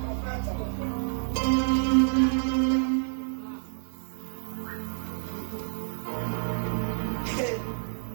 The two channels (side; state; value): left; silent; 59 dB below the other